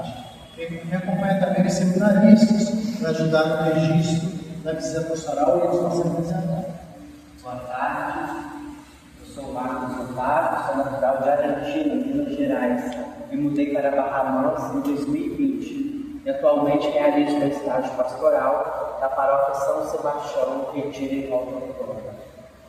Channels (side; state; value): both; identical; correlation 1.00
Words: Me acompanha também os seminaristas para ajudar no registro da visita pastoral e eles vão ser apresentados. Boa tarde, eu sou Marcos Otávio, sou natural de Argentina, Minas Gerais. Me mudei para Barra Mansa em 2020 e atualmente realizo meu estágio pastoral da paróquia São Sebastião, Retiro em Volta Redonda.